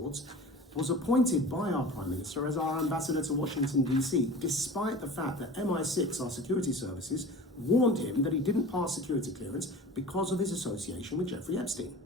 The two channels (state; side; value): normal; both; correlation 0.38